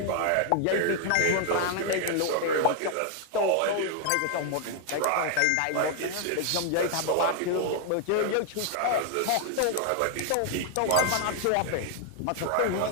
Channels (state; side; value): different; both; correlation 0.00